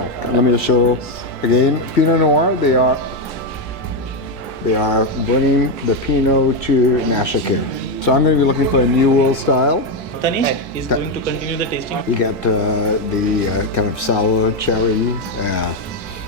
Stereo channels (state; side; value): normal; both; correlation 0.06